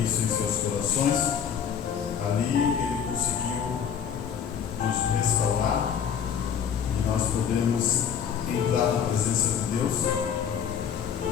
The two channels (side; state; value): right; quieter; 7.8 dB